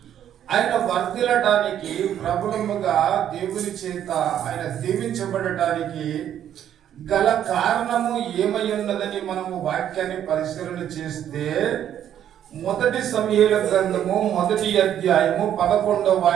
ఆయన వర్ధిల్లడానికి, ప్రబలముగా దేవుని చేత ఆయన దీవించబడటానికి గల కారణము ఏమై ఉన్నదని మనము వాక్యాన్ని పరిశీలన చేస్తే, మొదటి సమూయేలు గ్రంథము 1వ అధ్యాయము 11వ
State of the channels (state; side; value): quieter; left; 10.3 dB